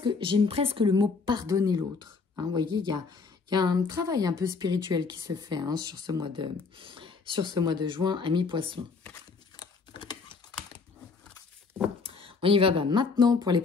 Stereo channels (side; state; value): right; quieter; 4.7 dB